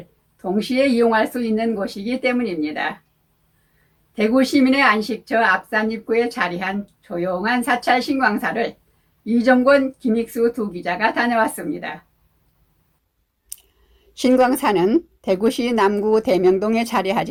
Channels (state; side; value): identical; both; correlation 1.00